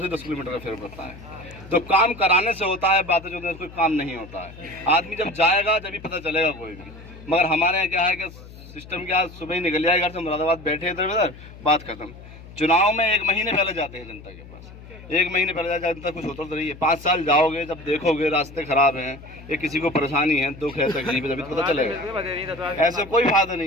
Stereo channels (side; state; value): left; noise; hum, 17 dB below the sound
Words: से 10 किलोमीटर का फेर पड़ता है। तो काम कराने से होता है, बातें जो कोई काम नहीं होता है। आदमी जब जाएगा तभी पता चलेगा कोई भी। मगर हमारे यहाँ क्या है कि सिस्टम क्या, सुबह ही निकल जाए घर से, मुरादाबाद बैठे इधर उधर, बात खत्म। चुनाव में 1 महीने पहले जाते हैं जनता के पास, 1 महीने पहले जनता कुछ होता तो नहीं है। 5 साल जाओगे, जब देखोगे रास्ते खराब हैं, ये किसी को परेशानी है, दुख है, तकलीफ है, तभी तो पता चलेगा। ऐसे कोई फायदा